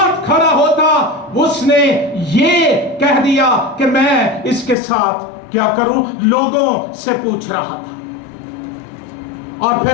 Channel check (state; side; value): drops out; right; at 4.8 s